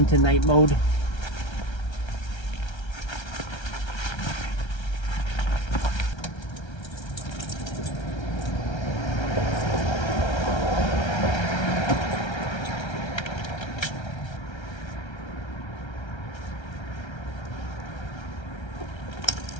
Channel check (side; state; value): right; late; 1.3 ms